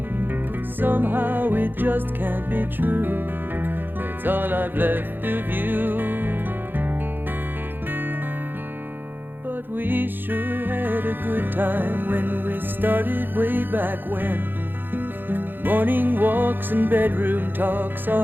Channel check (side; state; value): left; late; 0.095 ms